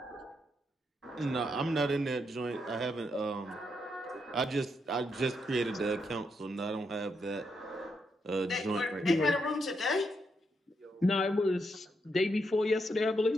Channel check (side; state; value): both; normal; correlation 0.80